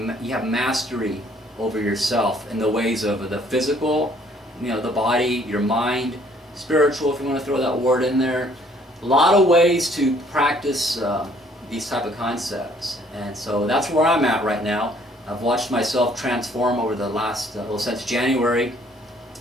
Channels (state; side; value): normal; both; correlation 0.61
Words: you have mastery over yourself in the ways of the physical, you know, the body, your mind, spiritual, if you want to throw that word in there. A lot of ways to practice these type of concepts, and so that's where I'm at right now. I've watched myself transform over the last, well, since January,